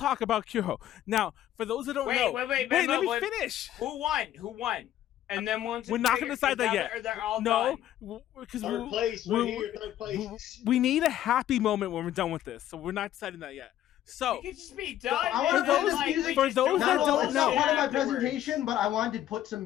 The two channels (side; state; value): right; quieter; 12.3 dB